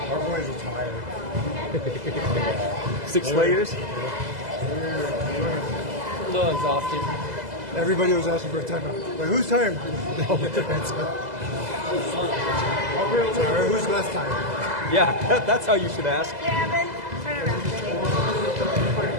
our boys are tired. 6 layers. A little exhausted. Everybody was asking for a timeout. Like, who's tired? Sorry, who's less tired? Yeah, that's how you should ask. Gavin, turn around,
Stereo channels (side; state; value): left; late; 2.0 ms